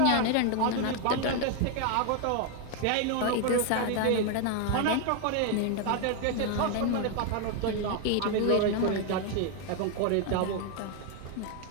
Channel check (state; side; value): different; both; correlation 0.01